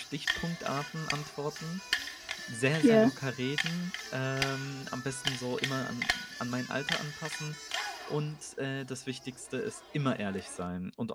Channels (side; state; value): both; identical; correlation 1.00